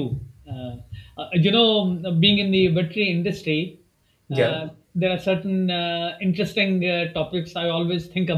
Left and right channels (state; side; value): identical; both; correlation 1.00